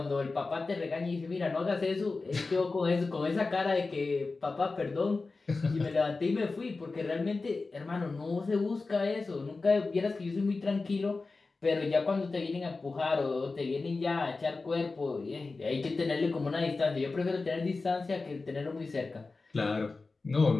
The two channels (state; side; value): quieter; right; 3.8 dB